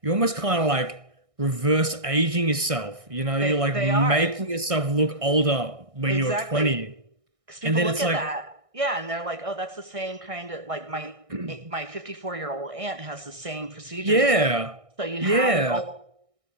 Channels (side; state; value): left; late; 1.6 ms